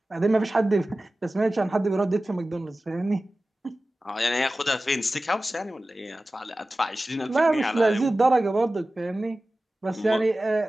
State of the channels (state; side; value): normal; both; correlation 0.96